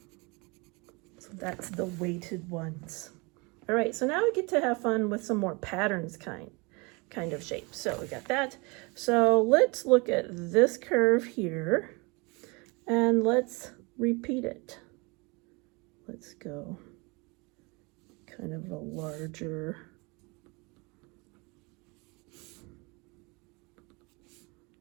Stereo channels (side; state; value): left; quieter; 28.0 dB